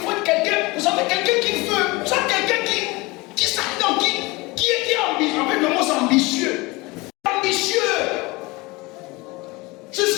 faut être quelqu'un, vous savez, quelqu'un qui veut, vous savez, quelqu'un qui s'attend, qui est ambitieux. En fait, le mot c'est ambitieux. Ambitieux. Je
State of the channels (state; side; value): quieter; right; 23.6 dB